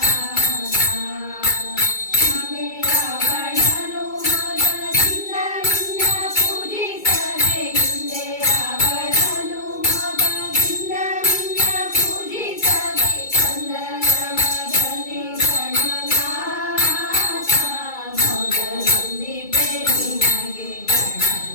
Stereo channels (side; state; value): right; late; 2.3 ms